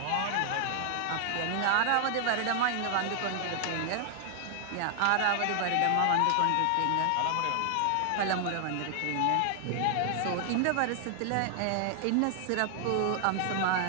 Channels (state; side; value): different; both; correlation 0.00